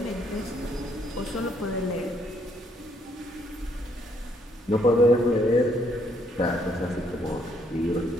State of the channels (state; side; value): normal; both; correlation 0.70